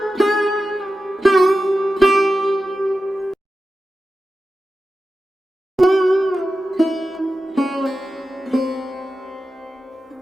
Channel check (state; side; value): normal; both; correlation 0.92